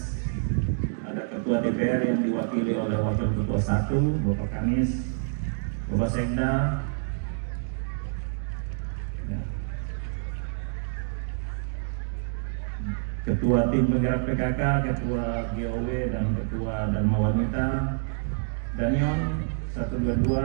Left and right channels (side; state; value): left; silent; digital silence